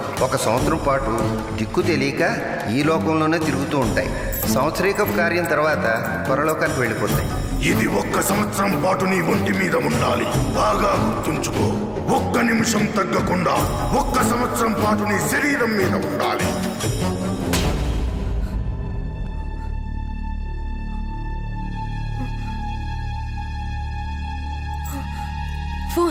1 సంవత్సరం పాటు దిక్కు తెలియక ఈ లోకంలోనే తిరుగుతూ ఉంటాయి. సంవత్సరీకపు కార్యం తర్వాత పరలోకానికి వెళ్ళిపోతాయి. ఇది 1 సంవత్సరం పాటు నీ ఒంటి మీద ఉండాలి. బాగా గుర్తుంచుకో, 1 నిమిషం తగ్గకుండా 1 సంవత్సరం పాటు నీ శరీరం మీద ఉండాలి.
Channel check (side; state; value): both; identical; correlation 1.00